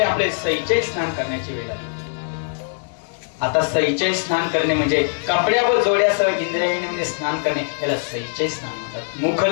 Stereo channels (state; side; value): silent; right; 64 dB below the other